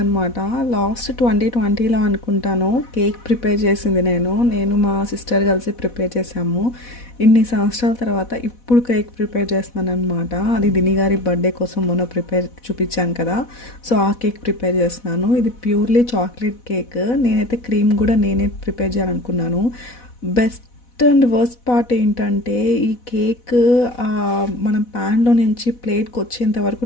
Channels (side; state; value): right; late; 4.1 ms